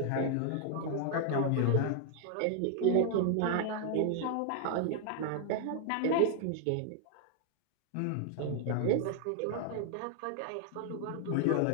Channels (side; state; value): both; different; correlation 0.00